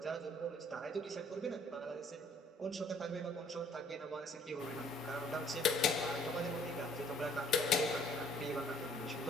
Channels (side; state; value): both; normal; correlation 0.59